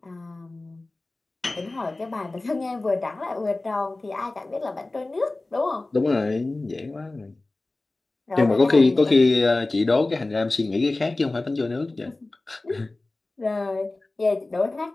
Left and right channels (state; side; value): quieter; right; 3.0 dB